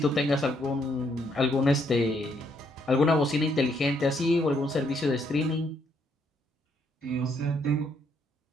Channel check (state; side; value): normal; both; correlation 0.72